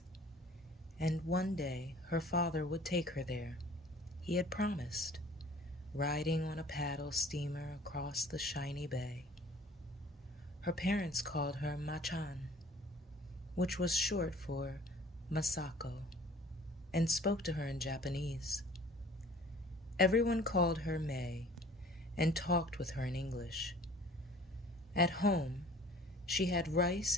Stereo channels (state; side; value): normal; both; correlation 0.49